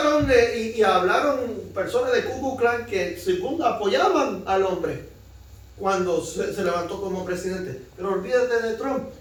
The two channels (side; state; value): both; identical; correlation 1.00